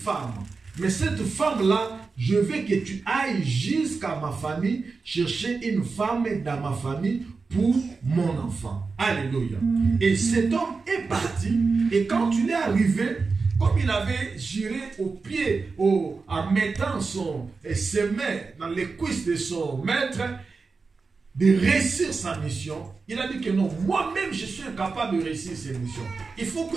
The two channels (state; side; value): quieter; left; 4.4 dB